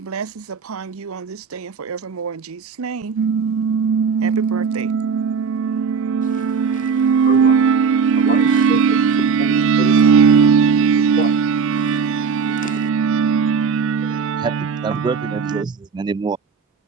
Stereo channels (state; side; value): quieter; left; 5.8 dB